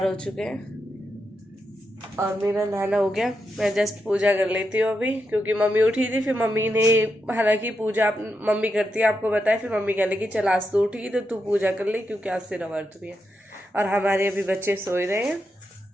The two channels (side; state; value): both; normal; correlation 0.85